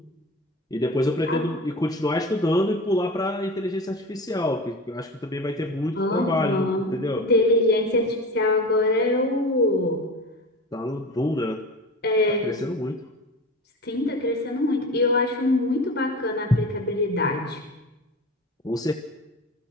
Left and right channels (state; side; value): normal; both; correlation 0.32